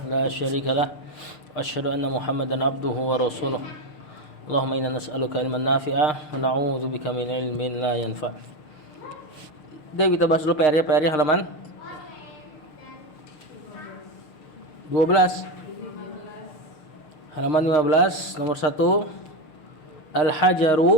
لا شريك له وأشهد أن محمدا عبده ورسوله اللهم إنا نسألك علما نافعا ونعوذ بك من علم لا ينفع. Jadi kita bahas dulu PR-nya halaman 12. Halaman 15 nomor 1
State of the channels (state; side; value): late; right; 6.6 ms